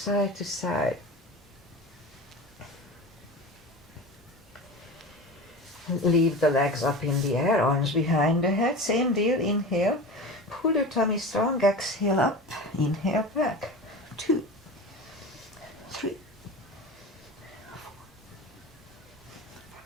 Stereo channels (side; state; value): both; normal; correlation 0.31